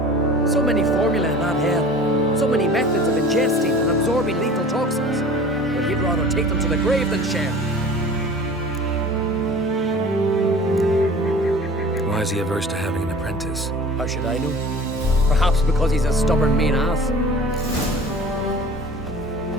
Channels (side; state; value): both; normal; correlation 0.42